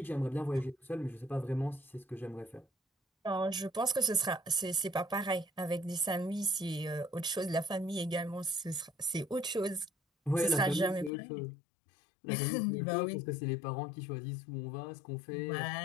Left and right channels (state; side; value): drops out; right; at 11.1 s